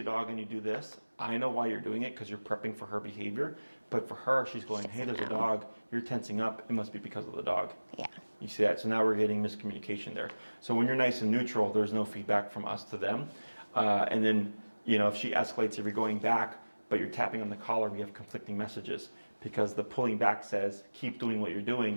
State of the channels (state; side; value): inverted; both; correlation -1.00